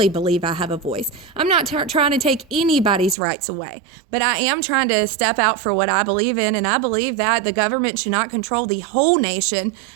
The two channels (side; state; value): left; drops out; at 3.2 s